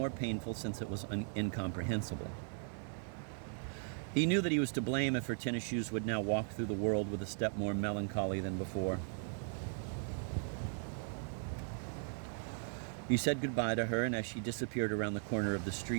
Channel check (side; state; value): left; silent; 52 dB below the other